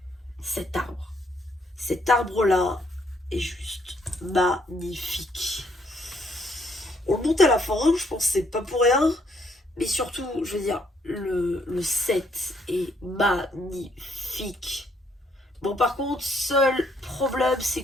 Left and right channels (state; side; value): normal; both; correlation 0.70